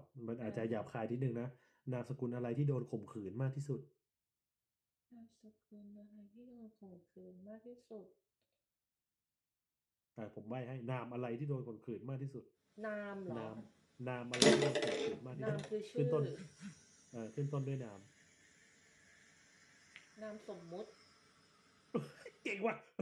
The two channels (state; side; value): identical; both; correlation 1.00